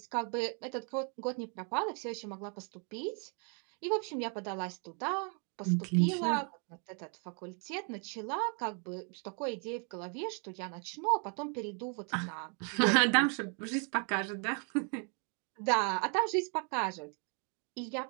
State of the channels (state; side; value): quieter; left; 39.3 dB